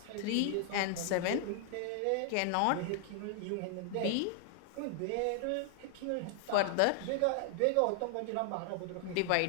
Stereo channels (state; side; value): different; both; correlation 0.00